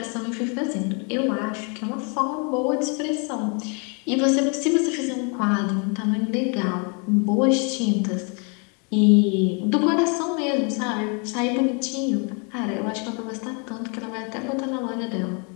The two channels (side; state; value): right; quieter; 36.0 dB